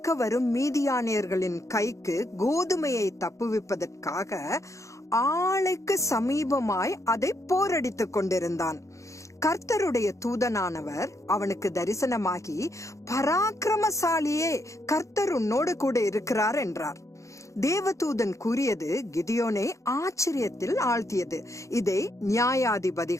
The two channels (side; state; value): right; late; 0.15 ms